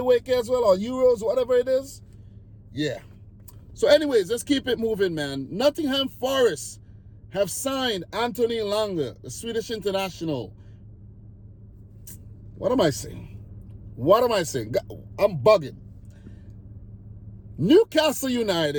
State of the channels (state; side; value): identical; both; correlation 1.00